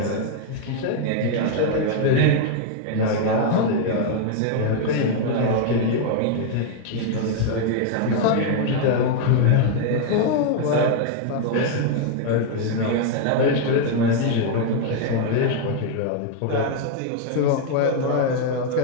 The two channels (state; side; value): different; both; correlation 0.00